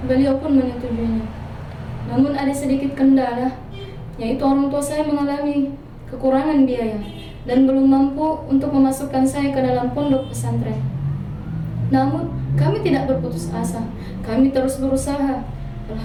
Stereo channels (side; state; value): both; identical; correlation 1.00